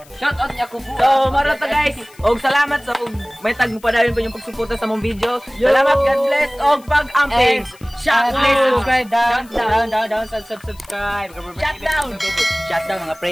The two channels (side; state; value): left; noise; hiss, 26 dB below the sound